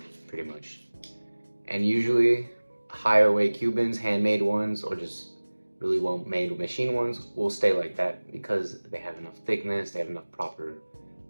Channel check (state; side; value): inverted; both; correlation -1.00